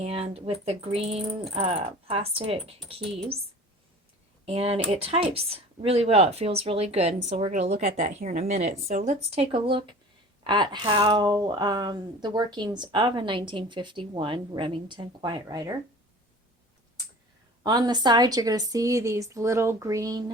with the green plastic keys. And it types really well. It feels really good. And so we're going to look at that here in a minute. So let's take a look at how the workings of a 1951 Remington Quiet Riter. On the side, you're going to see these little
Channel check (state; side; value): normal; both; correlation 0.41